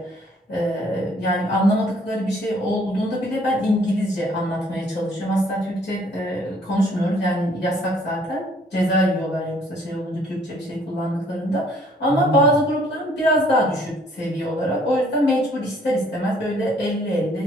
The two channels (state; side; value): normal; both; correlation 0.61